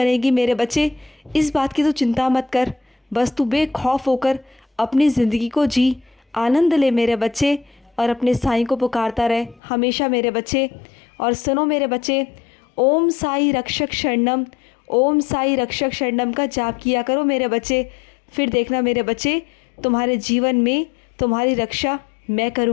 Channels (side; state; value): right; drops out; at 9.6 s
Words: मेरे बच्चे। इस बात की तो चिंता मत कर। बस तू बेखौफ होकर अपनी ज़िंदगी को जी, आनंद ले मेरे बच्चे, और अपने साईं को पुकारता रहे हमेशा मेरे बच्चे। और सुनो मेरे बच्चे, ओम साई रक्षक शरणम, ओम साई रक्षक शरणम का जाप किया करो मेरे बच्चे। फिर देखना मेरे बच्चे, तुम्हारे जीवन में तुम्हारी रक्षा मैं